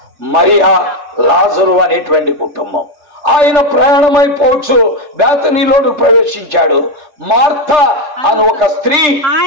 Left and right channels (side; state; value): left; late; 3.3 ms